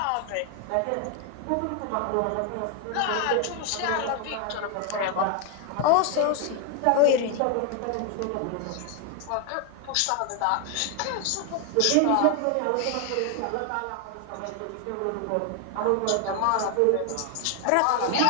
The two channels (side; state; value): both; different; correlation 0.01